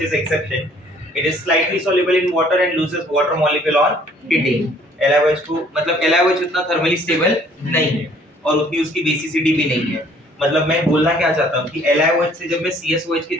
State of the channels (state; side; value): normal; both; correlation 0.58